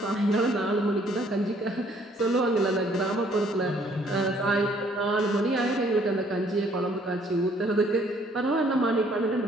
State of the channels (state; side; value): normal; both; correlation 0.62